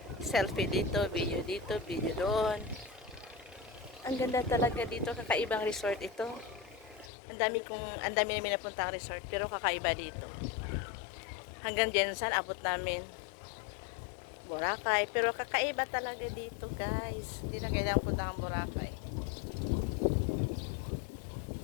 selfie dito, video doon. Ang ganda talaga dito, kakaibang resort ito. Ang dami namin napuntang resort, pero kakaiba dito. Hanggang Jensen, abot namin Boracay, pero kakaiba talaga dito guys. Hindi na kailangang punta ang Boracay.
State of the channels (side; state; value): right; drops out; at 7.1 s